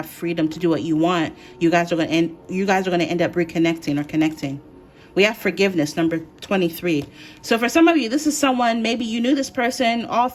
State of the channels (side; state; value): both; identical; correlation 1.00